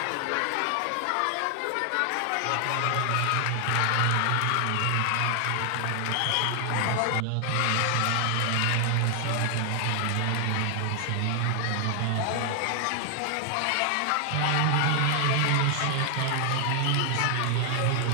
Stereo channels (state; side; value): different; both; correlation 0.00